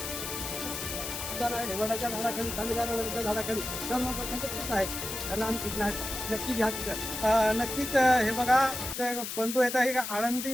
झाडाखाली झाडाखाली नक्की घ्या. नक्कीच हे बघा बंधू येत आहे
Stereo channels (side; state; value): left; noise; hiss, 5 dB below the sound